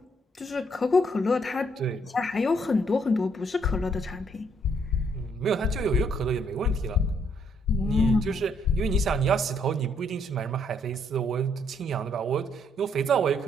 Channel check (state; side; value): normal; both; correlation 0.70